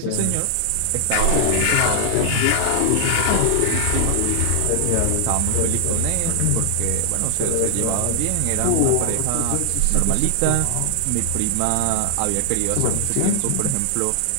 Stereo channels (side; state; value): both; different; correlation 0.00